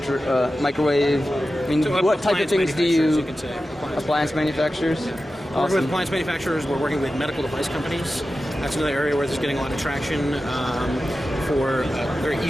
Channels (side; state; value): both; normal; correlation 0.93